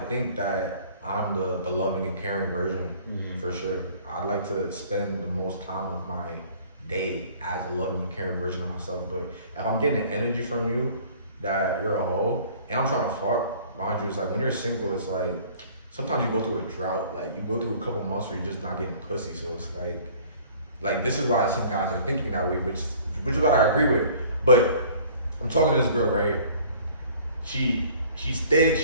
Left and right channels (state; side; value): inverted; both; correlation -0.51